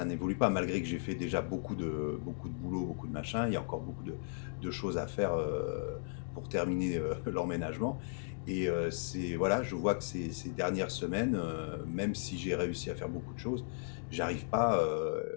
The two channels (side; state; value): right; silent; digital silence